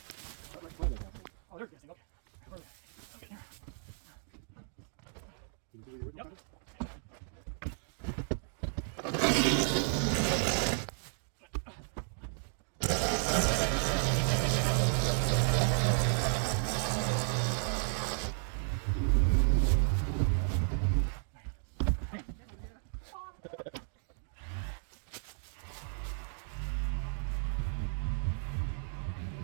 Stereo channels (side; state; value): left; silent; 55 dB below the other